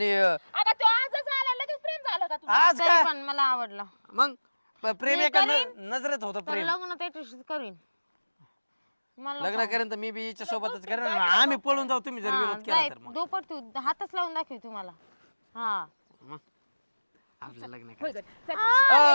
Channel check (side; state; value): both; inverted; correlation -1.00